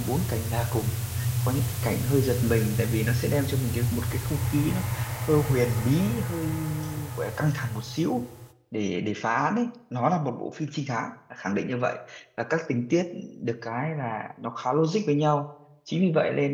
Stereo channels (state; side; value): identical; both; correlation 1.00